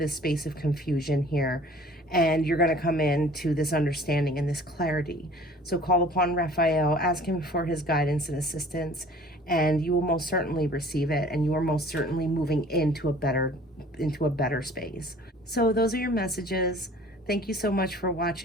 space of confusion here, and you're going to come into this understanding and this clarity. So call upon Raphael, ask him for his guidance and assistance, and you will most certainly receive it, and you are most certainly moving into a better space. So those are your messages. Thank you so much for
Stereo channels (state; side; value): normal; both; correlation 0.49